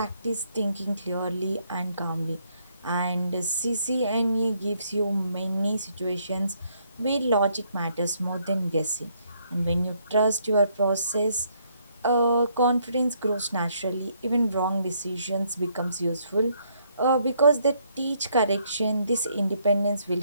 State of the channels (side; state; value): both; inverted; correlation -0.71